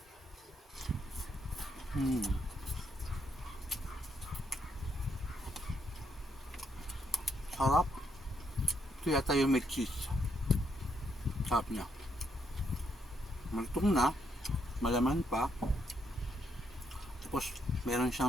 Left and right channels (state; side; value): normal; both; correlation 0.76